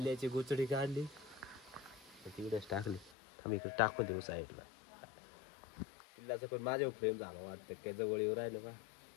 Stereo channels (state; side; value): drops out; right; at 3.1 s